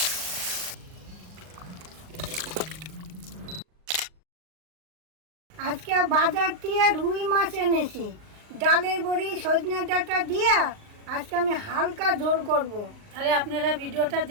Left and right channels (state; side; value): late; left; 39 ms